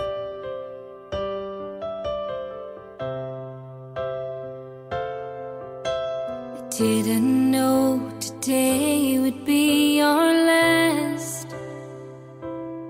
Didn't know today would be our last,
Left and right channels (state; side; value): identical; both; correlation 1.00